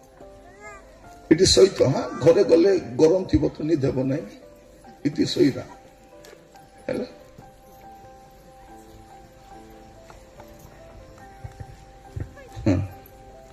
ଏଠି ସହିତ ହଁ ଘରେ ଗଲେ ଗରମ ଥିବ ତ ନିଦ ହେବ ନାହିଁ ଏଠି ଶୋଇବା ହେଲା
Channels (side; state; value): both; identical; correlation 1.00